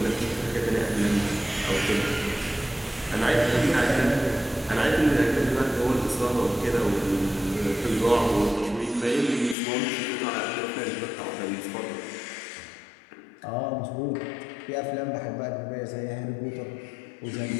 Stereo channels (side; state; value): right; drops out; at 9.6 s